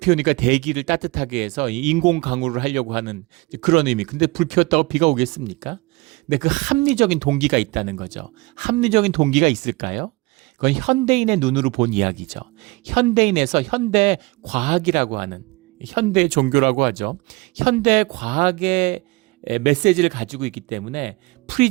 대기를 따뜻하게 해서 인공 강우를 하려고 하는 그런 의미. 근데 불 피웠다고 비가 오겠습니까? 근데 그 합리적인 동기가 있다는 거죠. 합리적인 동기가 있을까요? 그건 현대인의 눈으로 본 이야기죠. 현대인에서 현대 과학이라고 하는, 현대 종교라고 하죠. 현대 과학의 메시지를 가지고 있기 때문에,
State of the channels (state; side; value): quieter; left; 23.8 dB